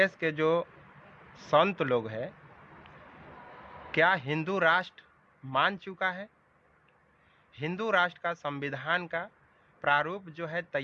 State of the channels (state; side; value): identical; both; correlation 1.00